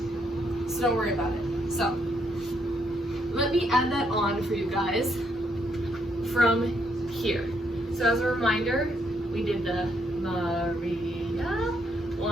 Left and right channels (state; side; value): normal; both; correlation 0.74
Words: so don't worry about it. So, let me add that on for you guys from here. So as a reminder, we did the Maria,